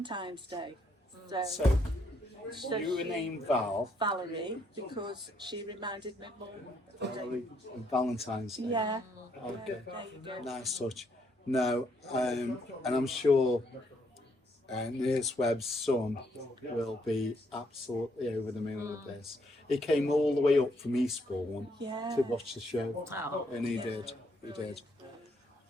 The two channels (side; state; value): both; normal; correlation 0.72